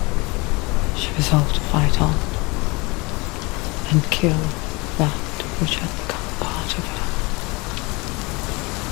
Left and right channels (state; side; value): quieter; right; 26.1 dB